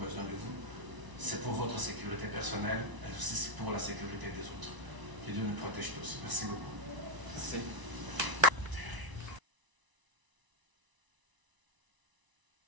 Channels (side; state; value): left; late; 1.0 ms